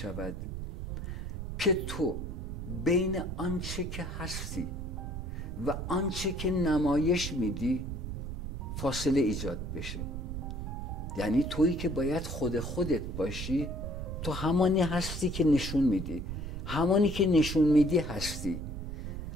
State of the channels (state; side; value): noise; right; rumble, 5 dB below the sound